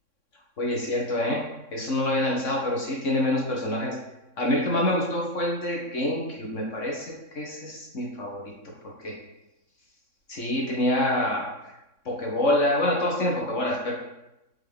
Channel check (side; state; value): right; late; 3.6 ms